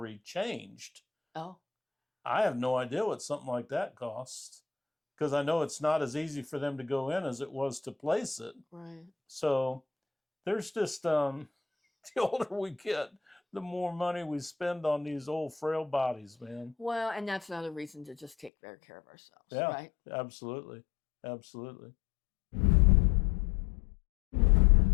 changed. Oh, I have no idea what something like that costs, because I know it's not as easy for them to go in as it was to place it. right. So there's just the older we get, the more money we spend on these old frail bodies, man. Well, and that's another reason to just take better care of ourselves, Yeah, right? absolutely. Absolutely.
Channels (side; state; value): right; drops out; at 18.5 s